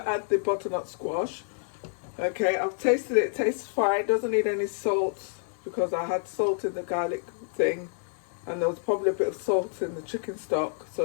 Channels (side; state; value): right; silent; 59 dB below the other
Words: add the butternut squash. Okay, I've tasted it. It tastes fine. Doesn't need any salt because I had salt in the garlic thing, and there was probably a bit of salt in the chicken stock, so